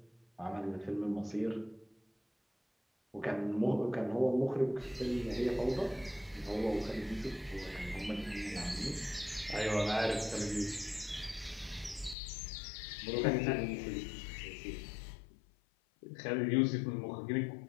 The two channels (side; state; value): right; drops out; at 12.2 s